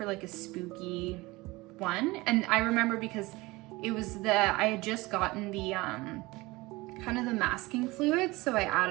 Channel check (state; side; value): quieter; left; 21.6 dB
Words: like a spooky one. And I remember because it was I had just gotten the kind of the masking fluid, so I